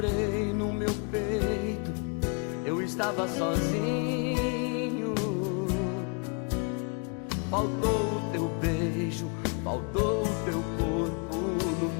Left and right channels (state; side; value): quieter; right; 35.9 dB